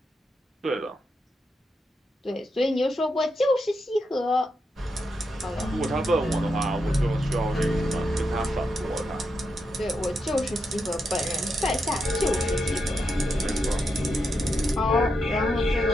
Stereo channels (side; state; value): both; normal; correlation 0.84